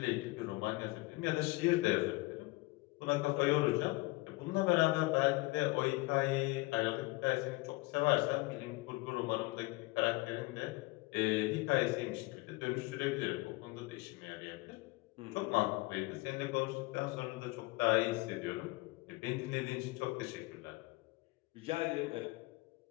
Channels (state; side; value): quieter; right; 23.1 dB